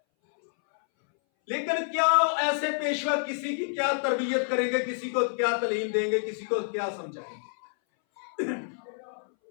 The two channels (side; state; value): right; silent; 59 dB below the other